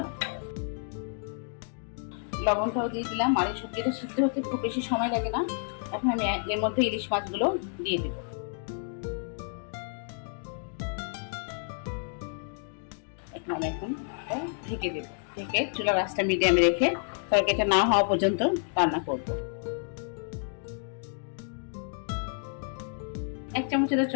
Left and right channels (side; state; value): right; silent; 58 dB below the other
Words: লবণটাও দিয়ে দিলাম। আর এই সবজিটা সিদ্ধ হতে খুব বেশি সময় লাগে না। এখন আমি এর মধ্যে ইলিশ মাছগুলো দিয়ে দিব। এখন ঢেকে দেব, ঢেকে চুলার আঁচটা মিডিয়ামে রেখে তরকারিটা না হওয়া পর্যন্ত রান্না করব। 1 চামচের